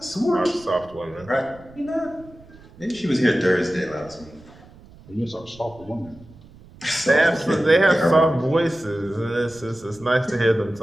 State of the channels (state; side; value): noise; right; rumble, 23 dB below the sound